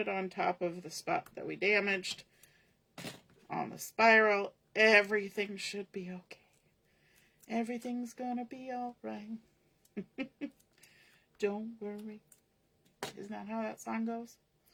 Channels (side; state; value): both; identical; correlation 1.00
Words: on top of the spot that we damaged on the spiral, everything should be okay. Everything's gonna be all right. Don't worry. Isn't that how that song goes?